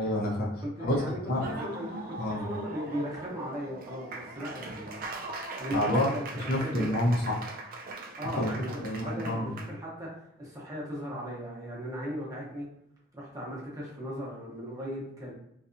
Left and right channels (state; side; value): normal; both; correlation 0.46